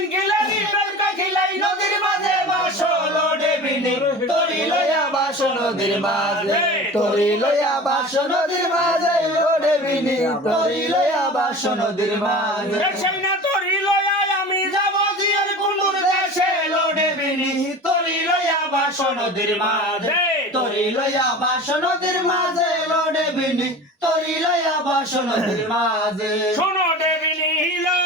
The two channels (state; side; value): normal; both; correlation 0.36